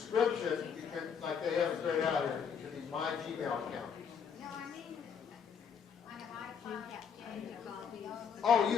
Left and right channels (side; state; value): right; quieter; 6.9 dB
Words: you can, like they have it straight out here, it can be my Gmail account. No, I mean, on an iPhone, Oh,